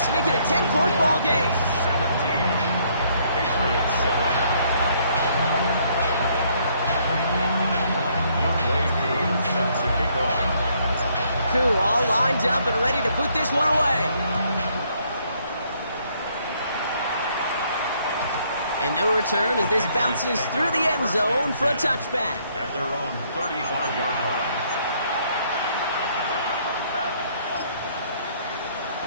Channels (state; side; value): inverted; both; correlation -0.67